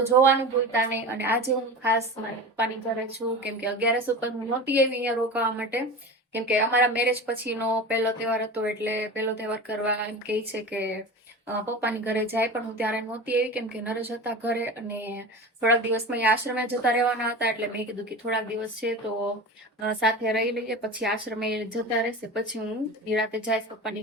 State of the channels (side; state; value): both; normal; correlation 0.31